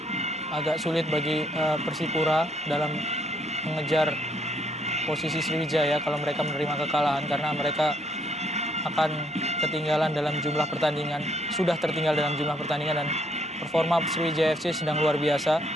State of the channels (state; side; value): normal; both; correlation 0.69